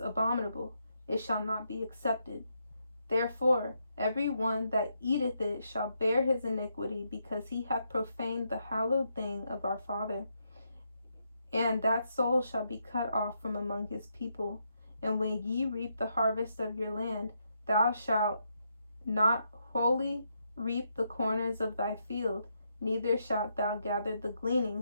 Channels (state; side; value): inverted; both; correlation -0.79